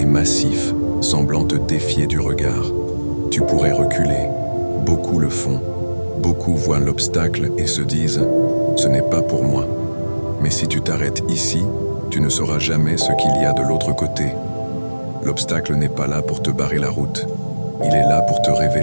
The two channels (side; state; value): both; inverted; correlation -1.00